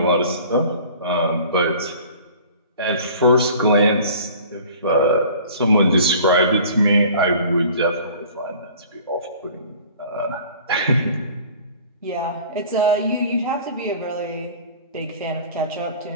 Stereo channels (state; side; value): inverted; both; correlation -0.46